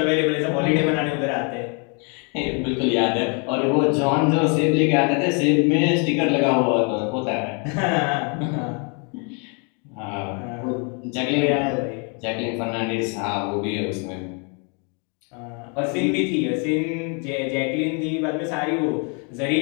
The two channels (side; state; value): right; quieter; 36.3 dB